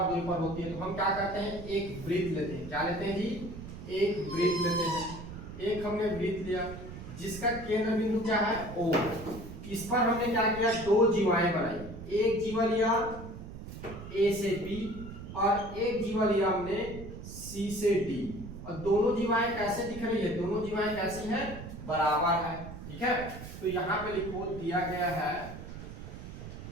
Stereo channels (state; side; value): noise; right; rumble, 11 dB below the sound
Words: दूरी पर होती है। तो हम क्या करते हैं, एक वृत्त लेते हैं। क्या लेते हैं जी, एक वृत्त लेते हैं। एक हमने वृत्त लिया जिसका केंद्र बिंदु क्या है, O। इस पर हमने क्या किया, दो जीवाएं बनाई। एक जीवा लिया A से B और एक जीवा लिया हमने C से D। और दोनों जीवाएं कैसे दिख रही है, दोनों जीवाएं कैसी हैं, बराबर है, ठीक है। तो यहाँ पे लिखो दिया गया है,